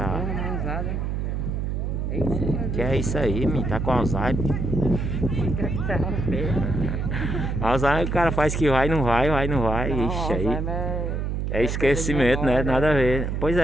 Mãozada, hein? É isso, Que é isso aí, menino? Tá com Alzheimer. Alzheimer o cara faz que vai, não vai. Ixi, aí. É esquecimento, né? Nada a ver. Pois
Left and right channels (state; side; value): noise; right; hum, 1 dB below the sound